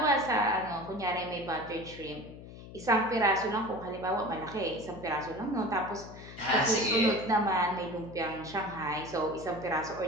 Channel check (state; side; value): noise; left; hum, 15 dB below the sound